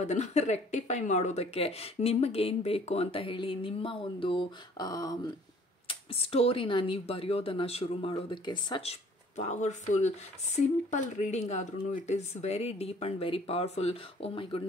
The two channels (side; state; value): both; normal; correlation 0.55